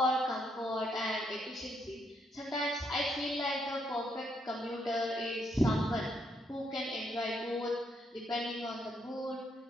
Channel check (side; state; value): both; normal; correlation 0.75